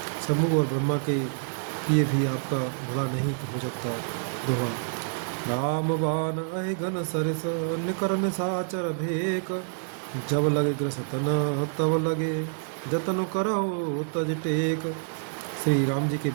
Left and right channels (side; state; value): left; silent; 60 dB below the other